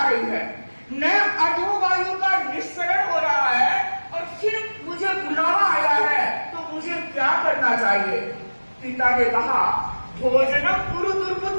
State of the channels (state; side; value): inverted; both; correlation -1.00